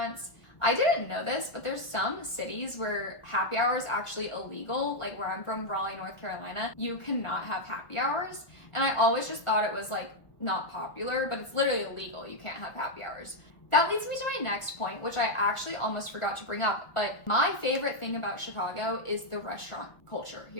I didn't know this, but there's some cities where happy hour is actually illegal. Like where I'm from, Raleigh, North Carolina, you cannot have happy hours. And I always just thought it was like not popular, but it's literally illegal. You can't have happy hours. That leads me to my next point, which I actually almost forgot to bring up, but my favorite thing about Chicago is the restaurant culture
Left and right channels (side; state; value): right; late; 1.4 ms